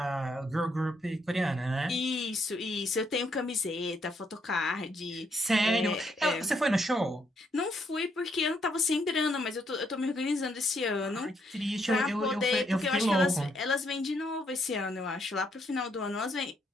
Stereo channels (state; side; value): normal; both; correlation 0.74